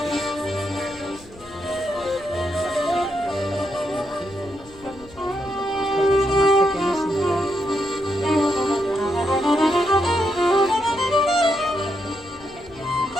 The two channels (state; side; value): noise; left; rumble, 22 dB below the sound